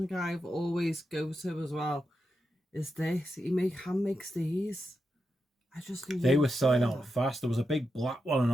I've always go to as well. Is this? He hand makes these. I just love They were selling out fast. There was a big black one, an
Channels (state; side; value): normal; both; correlation 0.87